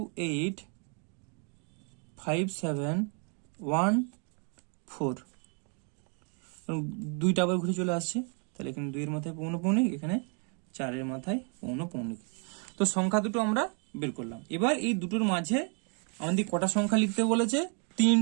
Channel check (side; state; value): left; quieter; 39.0 dB